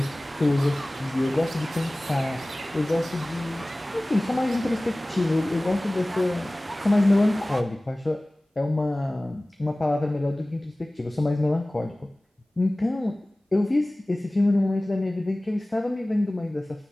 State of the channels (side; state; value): both; normal; correlation 0.98